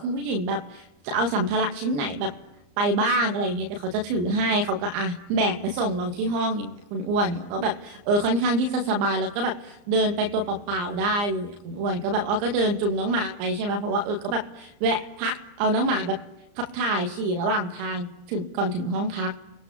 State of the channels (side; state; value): left; late; 34 ms